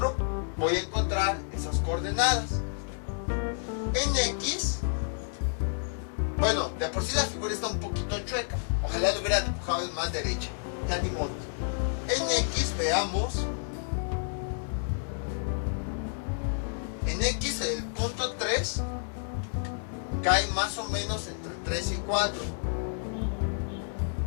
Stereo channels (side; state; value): right; silent; 58 dB below the other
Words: Voy a encontrar esas coordenadas. En X, bueno, de por sí la figura está un poquito chueca. Ojalá lo hubiera dibujado en más derecha. Ya ni modo. En X, veamos. En X, el punto 3 cae más o menos entre 3 y 4.